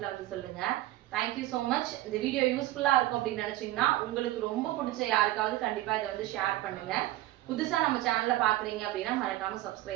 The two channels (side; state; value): left; quieter; 16.0 dB